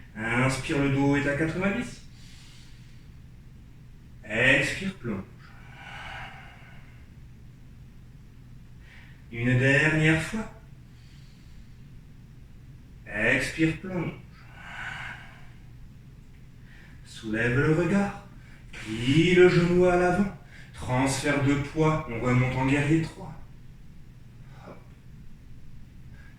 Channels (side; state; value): both; identical; correlation 1.00